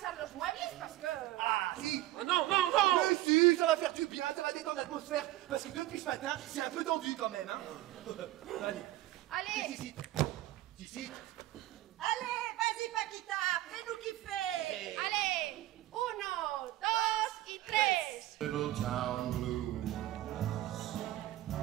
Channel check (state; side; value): quieter; left; 15.7 dB